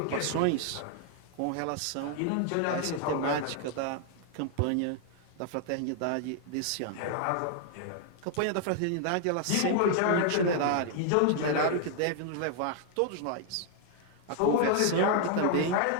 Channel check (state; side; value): different; both; correlation 0.00